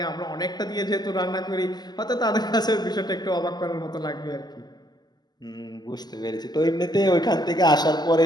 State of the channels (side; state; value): right; late; 0.20 ms